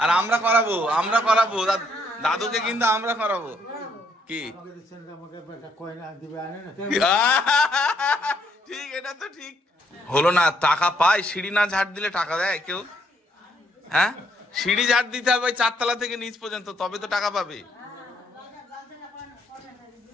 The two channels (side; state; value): both; normal; correlation 0.71